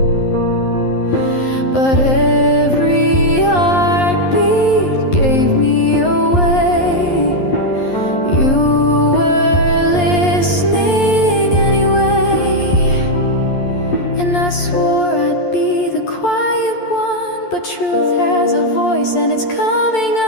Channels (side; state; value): right; late; 11 ms